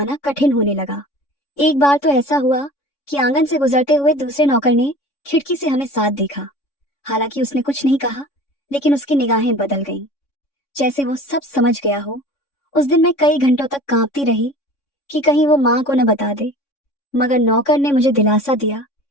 कठिन होने लगा। एक बार तो ऐसा हुआ कि आंगन से गुजरते हुए दूसरे नौकर ने खिड़की से हमें साथ देखा। हालांकि उसने कुछ नहीं कहा, लेकिन उसकी निगाहें बदल गईं, जैसे वो सब समझ गया हो। उस दिन मैं कई घंटों तक कांपती रही कि कहीं वो माँ को न बता दे, मगर नौकर ने मुझे दिलासा दिया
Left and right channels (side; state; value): right; late; 3.6 ms